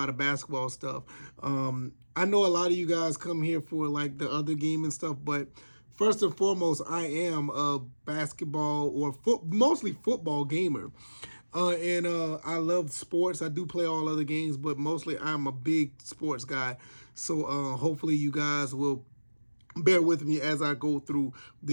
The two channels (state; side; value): inverted; both; correlation -1.00